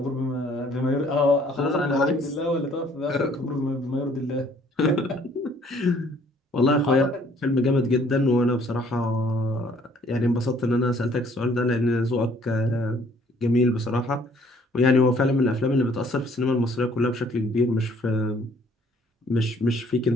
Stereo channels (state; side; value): normal; both; correlation 0.60